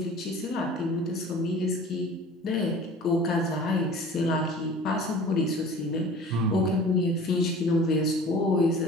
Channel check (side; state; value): both; normal; correlation 0.43